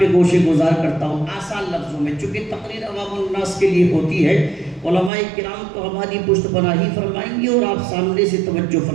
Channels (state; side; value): drops out; left; at 5.1 s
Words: گوشے گزار کرتا ہوں آسان لفظوں میں، چونکہ تقریر عوام الناس کے لیے ہوتی ہے۔ علماء کرام تو ہماری پشت پناہی فرمائیں گے اور آپ سامنے سے توجہ